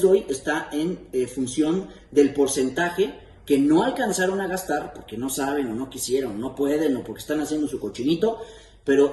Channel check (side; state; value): both; identical; correlation 1.00